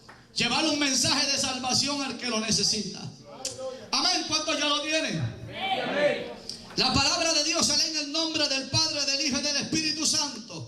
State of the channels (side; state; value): both; identical; correlation 1.00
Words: Llevar un mensaje de salvación al que lo necesita. Amén. ¿Cuántos ya lo tienen? Amén. La palabra de Dios se lee en el nombre del Padre, del Hijo y del Espíritu